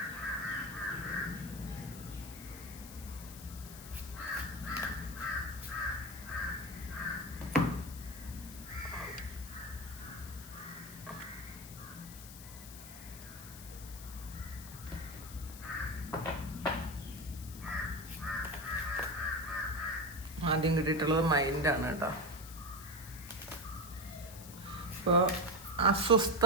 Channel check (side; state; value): left; noise; hiss, 14 dB below the sound